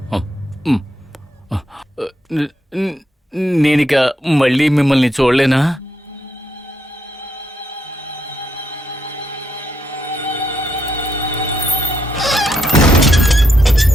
నేనిక మళ్ళీ మిమ్మల్ని చూడలేనా?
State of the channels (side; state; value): both; normal; correlation 0.78